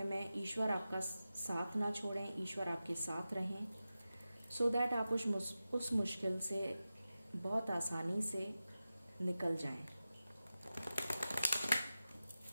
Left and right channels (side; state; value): both; inverted; correlation -0.93